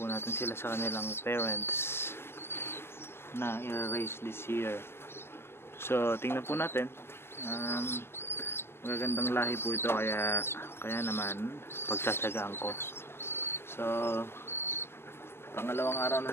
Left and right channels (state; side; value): late; right; 0.12 ms